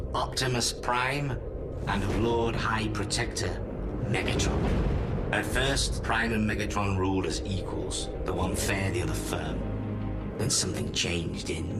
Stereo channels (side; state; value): both; identical; correlation 1.00